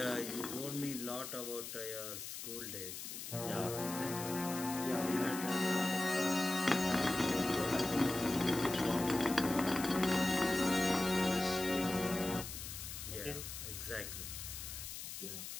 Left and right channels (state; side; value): noise; left; hiss, 8 dB below the sound